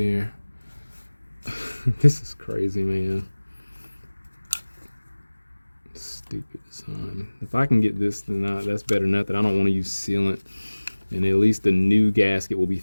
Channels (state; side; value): inverted; both; correlation -1.00